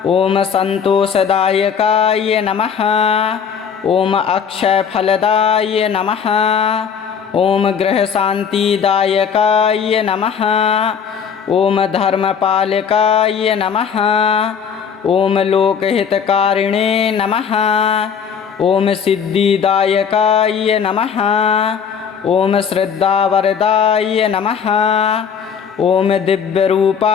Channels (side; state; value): right; quieter; 7.0 dB